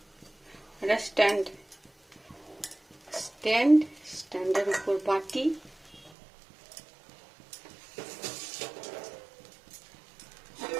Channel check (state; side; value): drops out; left; at 6.1 s